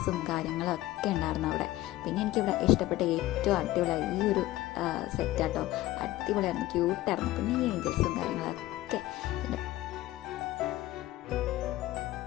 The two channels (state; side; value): quieter; right; 16.4 dB